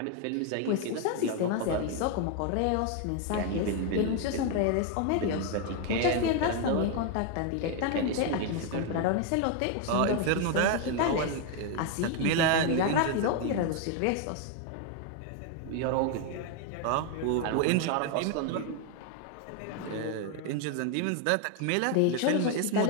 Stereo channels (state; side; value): different; both; correlation 0.01